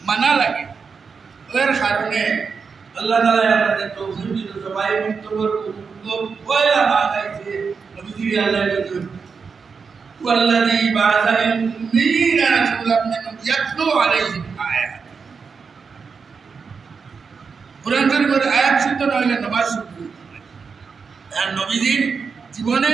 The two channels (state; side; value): quieter; left; 5.4 dB